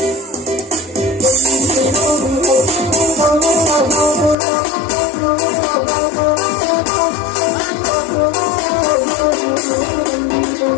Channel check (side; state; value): right; drops out; at 4.4 s